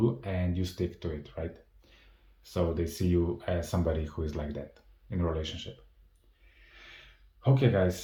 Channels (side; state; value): both; identical; correlation 1.00